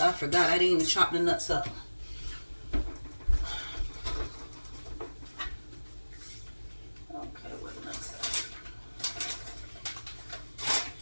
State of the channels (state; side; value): inverted; both; correlation -1.00